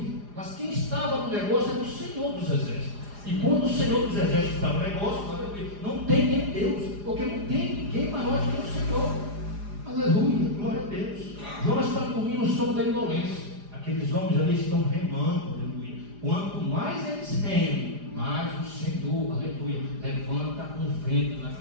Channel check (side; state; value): left; late; 4.9 ms